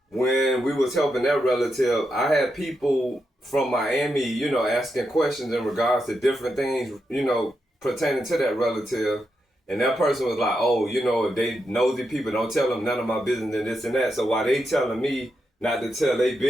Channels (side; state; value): both; normal; correlation 0.85